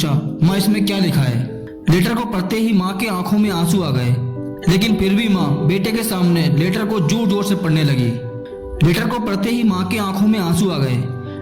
माँ इसमें क्या लिखा है? लेटर को पढ़ते ही माँ के आंखों में आंसू आ गए, लेकिन फिर भी माँ बेटे के सामने लेटर को जोर जोर से पढ़ने लगी। लेटर को पढ़ते ही माँ के आंखों में आंसू आ गए।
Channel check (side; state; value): both; identical; correlation 1.00